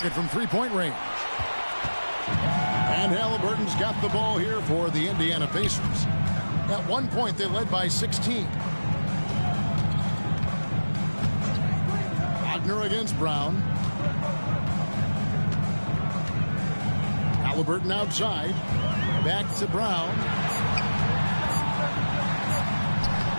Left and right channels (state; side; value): inverted; both; correlation -1.00